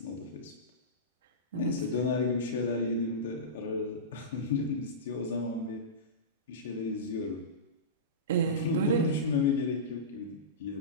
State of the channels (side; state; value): both; normal; correlation -0.20